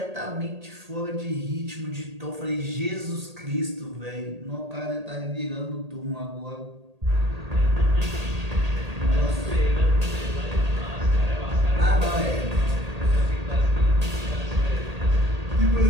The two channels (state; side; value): late; left; 1.8 ms